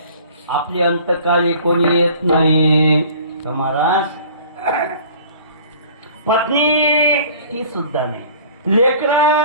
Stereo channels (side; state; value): both; inverted; correlation -0.48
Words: आपली अंतकाळी कोणी येत नाही. तर महाराज पत्नी ती सुद्धा नाही, लेकर